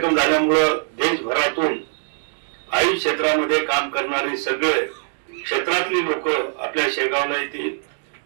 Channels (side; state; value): left; silent; 64 dB below the other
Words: झाल्यामुळे देशभरातून आयुष क्षेत्रामध्ये काम करणारे सगळे क्षेत्रातली लोक आपल्या शेगावला येतील।